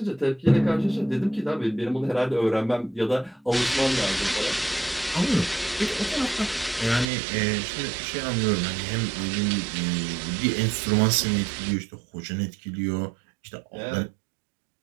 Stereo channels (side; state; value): left; drops out; at 7.1 s